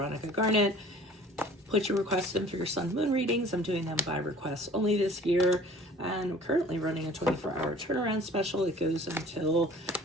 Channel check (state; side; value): normal; both; correlation 0.48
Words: Garnet. Put your requests in for your sun moon readings. I'm doing them by request only this year. And I'm currently running a 24-hour turnaround special. It goes until